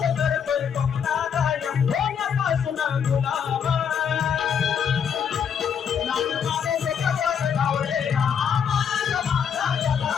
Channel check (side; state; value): right; quieter; 7.5 dB